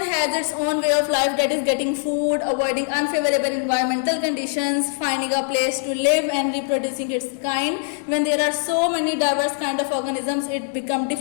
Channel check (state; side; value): silent; right; digital silence